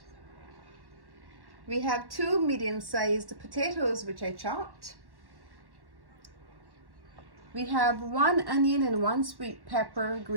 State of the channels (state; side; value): late; left; 1.1 ms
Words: We have 2 medium-sized potatoes which I chopped. We have 1 onion and 1 sweet pepper